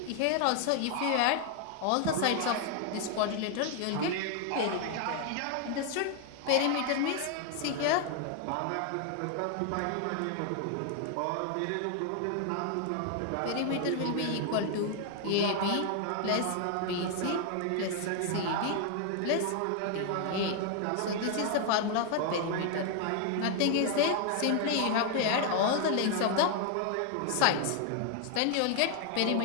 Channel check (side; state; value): both; different; correlation 0.00